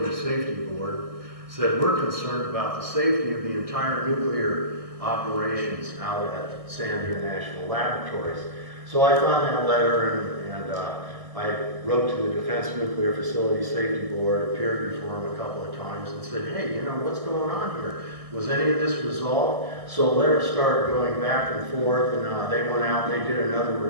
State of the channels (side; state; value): left; late; 1.6 ms